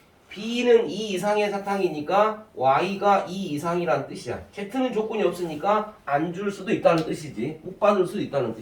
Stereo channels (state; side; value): identical; both; correlation 1.00